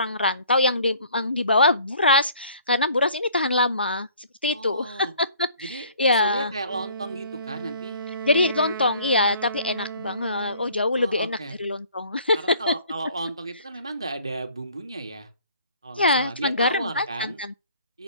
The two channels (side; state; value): both; inverted; correlation -0.55